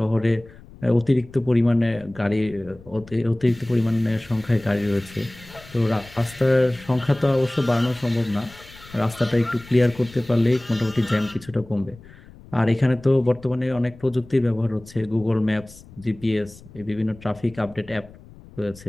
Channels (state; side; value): noise; left; rumble, 21 dB below the sound